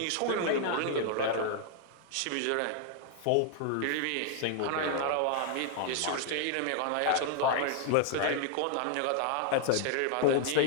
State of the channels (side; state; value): both; different; correlation 0.00